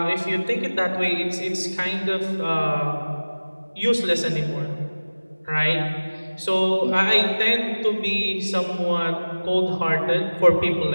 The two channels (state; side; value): inverted; both; correlation -1.00